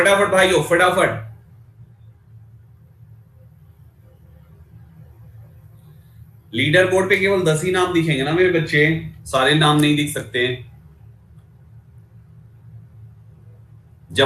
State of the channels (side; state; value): both; identical; correlation 1.00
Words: भाइयों फटाफट, लीडर बोर्ड पे केवल 10 ही नाम दिखेंगे ना मेरे बच्चे, सारे नाम नहीं दिख सकते।